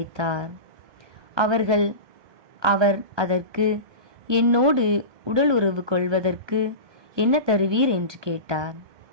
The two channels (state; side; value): late; left; 1.2 ms